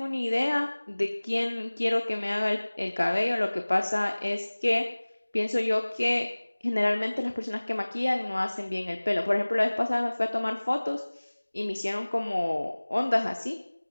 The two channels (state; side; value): inverted; both; correlation -1.00